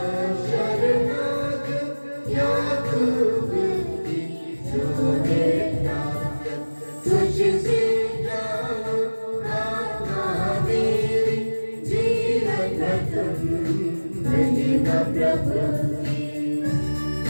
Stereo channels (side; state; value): both; inverted; correlation -1.00